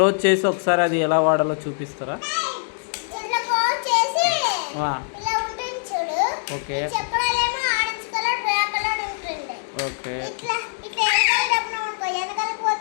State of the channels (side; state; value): right; silent; digital silence